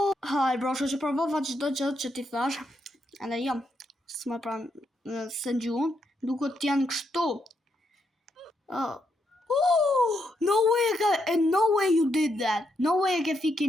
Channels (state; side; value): normal; both; correlation 0.79